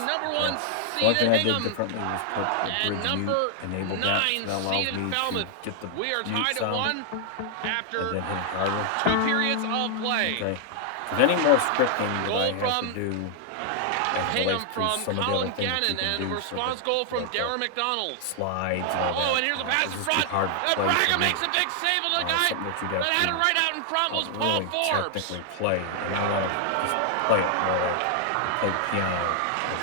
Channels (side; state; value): both; different; correlation 0.00